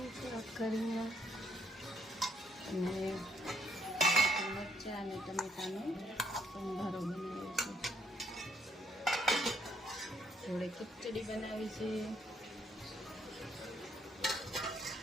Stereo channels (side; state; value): both; normal; correlation 0.71